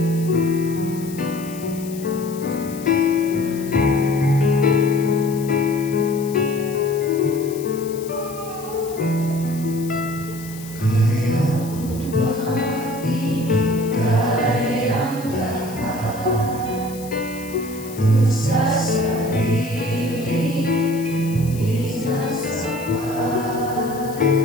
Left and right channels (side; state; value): left; noise; hiss, 16 dB below the sound